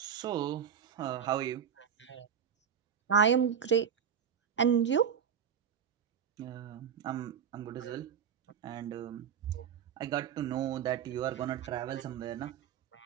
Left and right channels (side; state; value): left; quieter; 8.0 dB